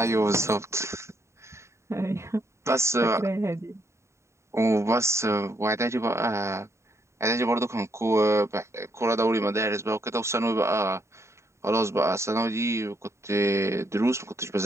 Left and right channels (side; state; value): left; late; 0.14 ms